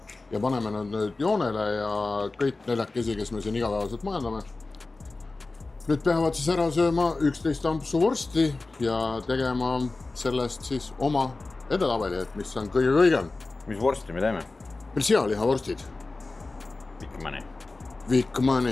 ja paneme nad nüüd joonele ja kõik neljakesi, kes me siin igapäevaselt majandame. Nüüd peavad siis ära sööma 11 ampsu vorsti ja tegema sellest siis oma edetabeli, et mis on kõige kõigem. Mis vorsti me teeme? Meil sealihavorstid.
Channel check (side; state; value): right; quieter; 3.4 dB